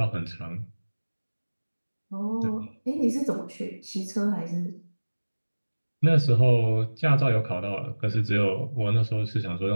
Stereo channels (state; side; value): inverted; both; correlation -1.00